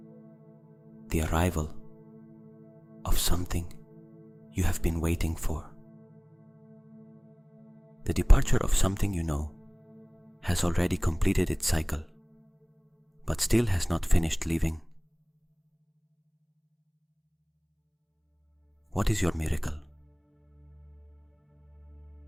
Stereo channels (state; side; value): identical; both; correlation 1.00